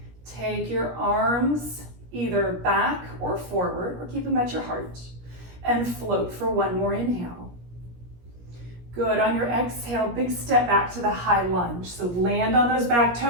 Take your arms either back or forward, or keep them at your heart, and float for one more inhale. Good. On your exhale, big step back to the high lunge. So land on those back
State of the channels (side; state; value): left; late; 17 ms